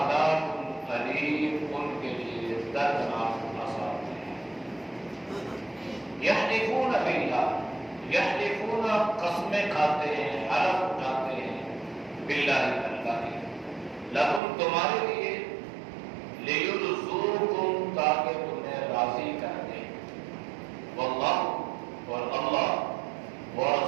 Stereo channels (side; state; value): left; drops out; at 14.4 s